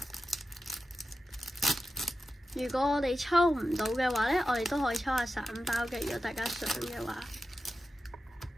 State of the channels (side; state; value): both; normal; correlation 0.92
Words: 如果我哋抽唔到嘅話呢，我哋都可以抽下散包嘅。如果大家想嘅話